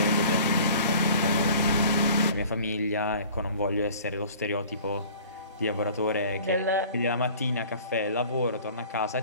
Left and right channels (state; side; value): inverted; both; correlation -0.47